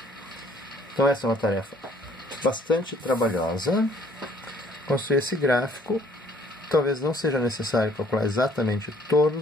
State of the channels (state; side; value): normal; both; correlation 0.61